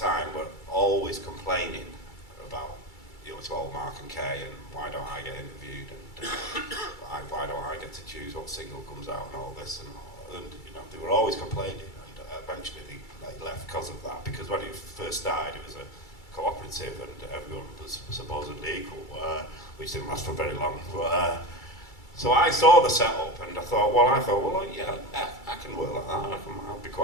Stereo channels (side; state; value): right; late; 2.3 ms